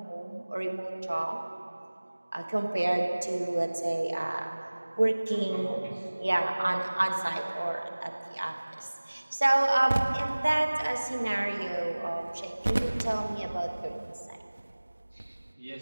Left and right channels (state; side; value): inverted; both; correlation -1.00